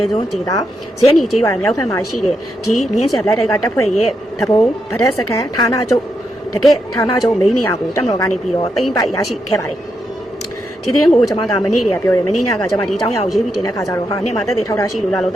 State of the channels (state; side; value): normal; both; correlation 0.83